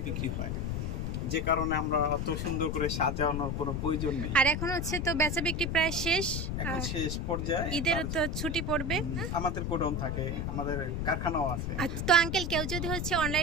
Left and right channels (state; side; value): noise; left; rumble, 2 dB below the sound